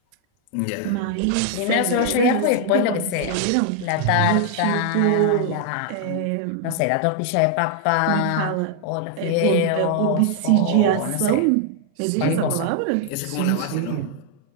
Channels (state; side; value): different; both; correlation 0.00